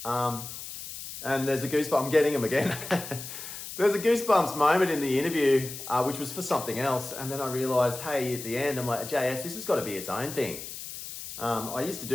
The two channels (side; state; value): left; noise; hiss, 10 dB below the sound